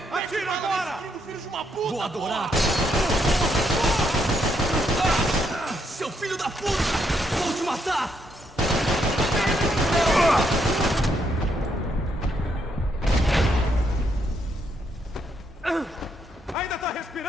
Atira agora! Filho de uma puta! Vou adorar! Seu filho da puta! Vou te matar! Ainda tá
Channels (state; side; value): normal; both; correlation 0.76